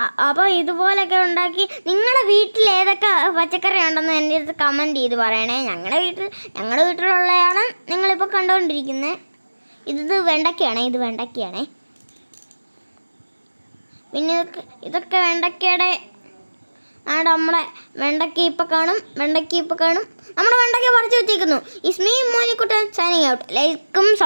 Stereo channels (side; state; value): both; inverted; correlation -1.00